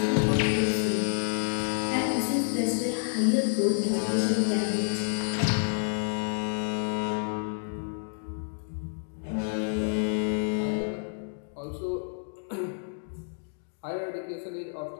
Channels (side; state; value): right; silent; digital silence